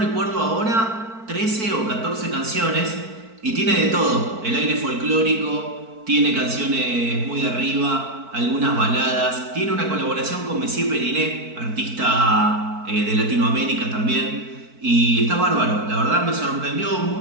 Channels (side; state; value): left; late; 4.5 ms